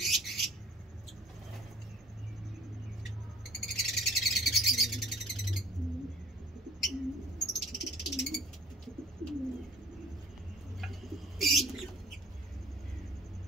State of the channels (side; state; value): both; normal; correlation 0.50